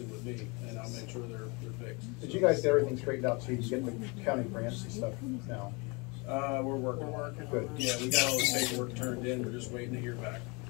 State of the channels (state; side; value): quieter; right; 29.4 dB